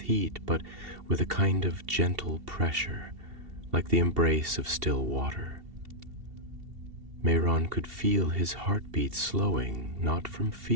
heat, but with a kind of gentle pressure, like the embrace of still water. Mehron could feel his heartbeat slowing, not from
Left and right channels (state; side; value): late; left; 2.7 ms